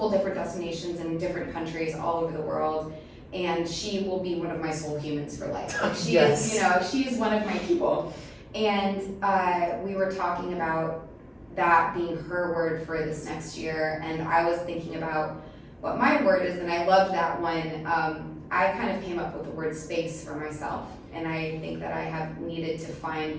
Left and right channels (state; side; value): identical; both; correlation 1.00